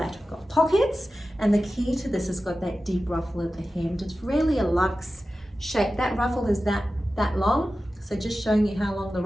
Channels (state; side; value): normal; both; correlation 0.94